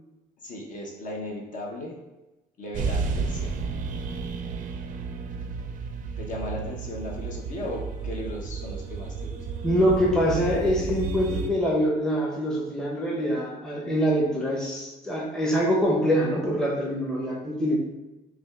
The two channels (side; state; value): both; normal; correlation 0.55